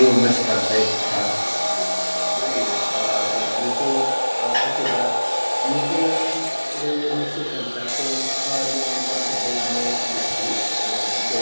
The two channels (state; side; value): inverted; both; correlation -1.00